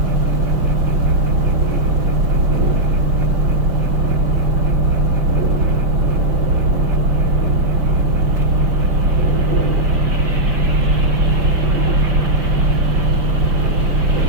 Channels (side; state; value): left; late; 5.4 ms